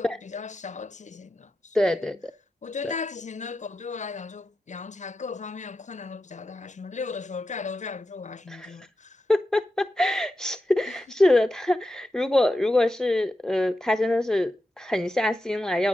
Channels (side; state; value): both; normal; correlation 0.89